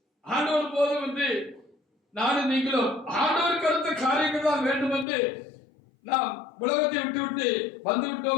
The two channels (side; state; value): right; drops out; at 5.1 s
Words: ஆண்டவர் போதும் என்று நானும் நீங்களும் ஆண்டவருக்கு அடுத்த காரியங்கள் தான் வேண்டும் என்று நாம் உலகத்தை விட்டு வந்து